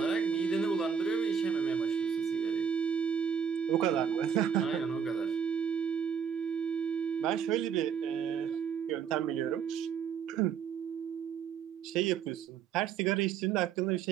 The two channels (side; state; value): left; quieter; 7.4 dB